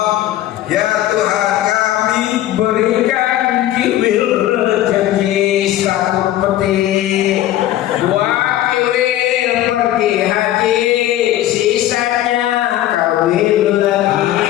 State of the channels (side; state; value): right; quieter; 13.6 dB